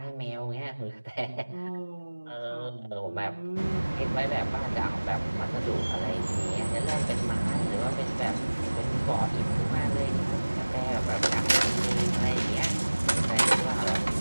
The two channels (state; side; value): inverted; both; correlation -1.00